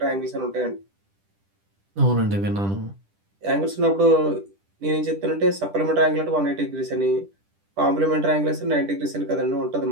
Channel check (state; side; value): late; left; 10 ms